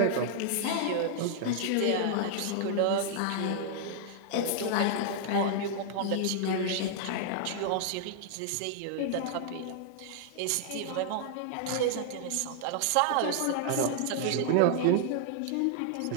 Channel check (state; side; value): different; both; correlation -0.01